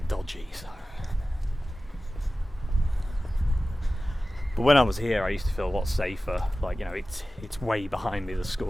dodgy. So. But when I was here, I used to feel a lot safer. Like, it's way behind me, the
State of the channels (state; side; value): normal; both; correlation 0.96